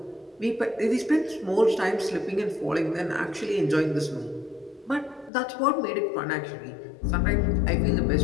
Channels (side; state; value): right; drops out; at 5.3 s